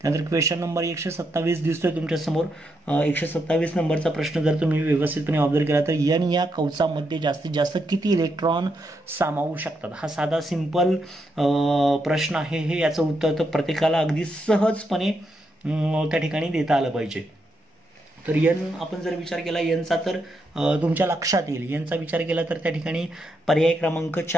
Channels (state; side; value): normal; both; correlation 0.81